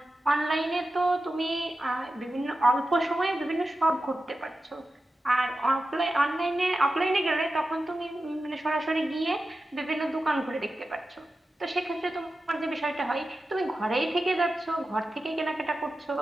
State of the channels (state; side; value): normal; both; correlation 0.92